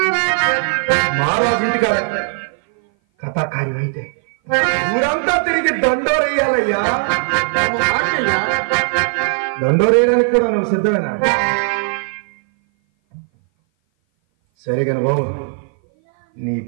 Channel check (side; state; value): left; silent; 58 dB below the other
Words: మహారాజు ఇంటికి కథాకార్యం అయితే ఊరంతా తిరిగి దండోరేయాలయ్యా. దండోరేయడానికి కూడా నువ్వు సిద్ధమేనా? సరే కాని బాబు, నీ